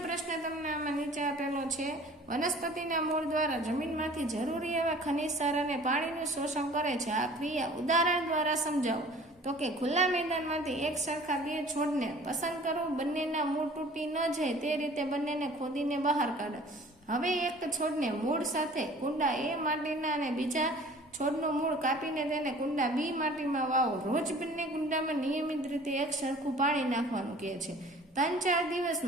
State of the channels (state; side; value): normal; both; correlation 0.48